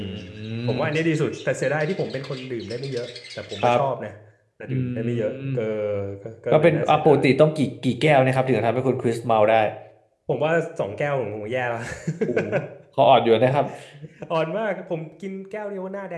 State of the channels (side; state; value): both; identical; correlation 1.00